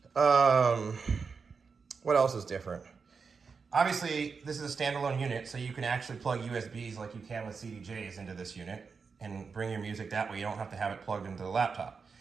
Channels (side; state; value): left; quieter; 5.2 dB